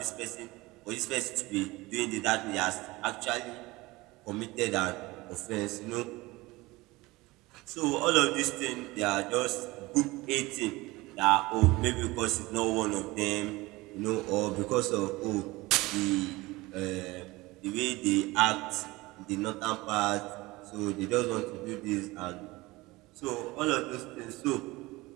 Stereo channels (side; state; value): left; quieter; 21.1 dB